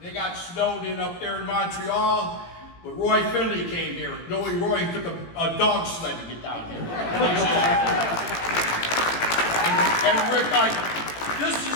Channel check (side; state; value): right; late; 18 ms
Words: got snowed in up there in Montreal, but Roy Finley came here. Knowing Roy, he took a dog sled to get down here. And Rick, this